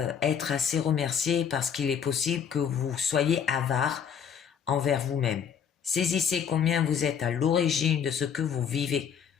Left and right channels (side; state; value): right; quieter; 7.6 dB